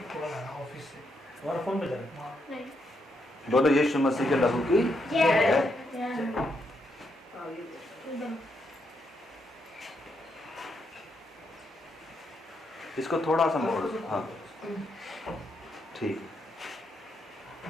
ऑफिस से तुम्हारा फोन बजा रहा है। बोलो यीशु मसीह के लहू की। इसको थोड़ा सा मोड़, हाँ ठीक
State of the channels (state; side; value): normal; both; correlation 0.79